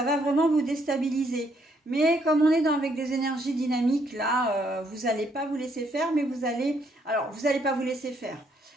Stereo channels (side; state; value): both; normal; correlation 0.71